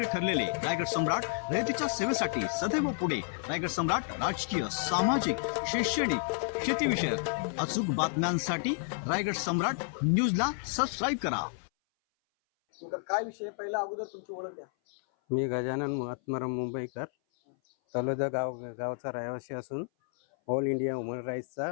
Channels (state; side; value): silent; right; 57 dB below the other